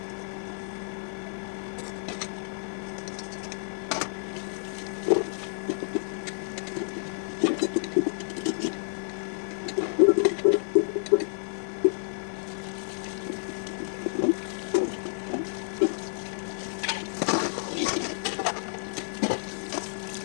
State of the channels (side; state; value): right; silent; digital silence